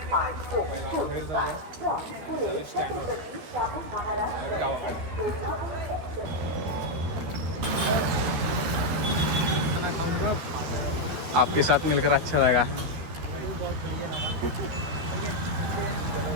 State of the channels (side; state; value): left; late; 13 ms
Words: पहिला बाहेर जाऊया आणि जाऊया स्टँडवर गावाकडे. आपके साथ मिलकर अच्छा लगा.